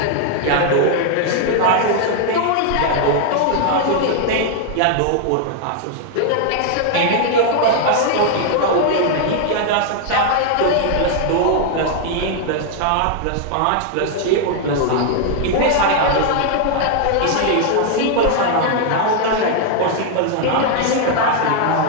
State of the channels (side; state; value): both; different; correlation 0.00